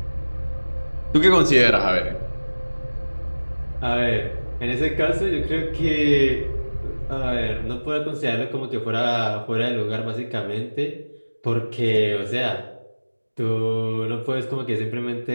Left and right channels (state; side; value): inverted; both; correlation -1.00